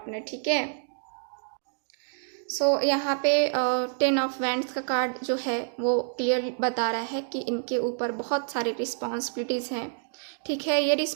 ठीक है। सो यहाँ पे 10 ऑफ वैंड्स का कार्ड जो है वो क्लियर बता रहा है कि इनके ऊपर बहुत सारी रिस्पॉन्सिबिलिटीज़ हैं, ठीक है। ये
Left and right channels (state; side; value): silent; left; digital silence